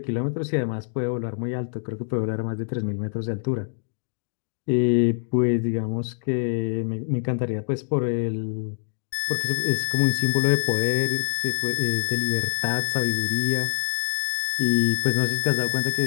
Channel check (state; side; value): silent; right; digital silence